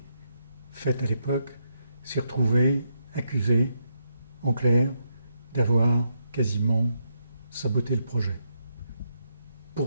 faites à l'époque, s'est retrouvé accusé, en clair, d'avoir quasiment saboté le projet.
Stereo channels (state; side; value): inverted; both; correlation -0.79